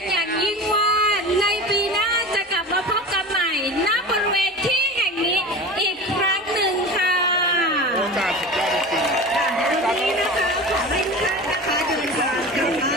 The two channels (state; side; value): normal; both; correlation 0.32